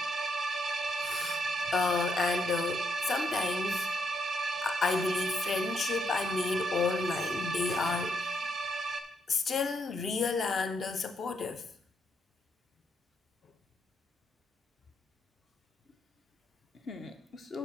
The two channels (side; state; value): both; normal; correlation 0.76